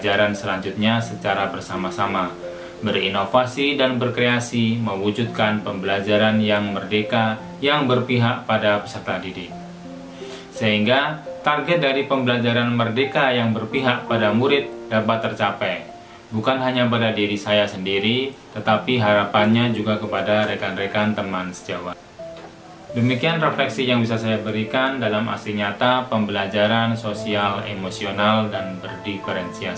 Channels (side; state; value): both; identical; correlation 1.00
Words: selanjutnya secara bersama-sama, berinovasi dan berkreasi, mewujudkan pembelajaran yang merdeka yang berpihak pada peserta didik. Sehingga target dari pembelajaran merdeka yang berpihak pada murid dapat tercapai, bukan hanya pada diri saya sendiri, tetapi harapannya juga kepada rekan-rekan teman sejawat. Demikian refleksi yang bisa saya berikan dalam aksi nyata pembelajaran sosial, emosional, dan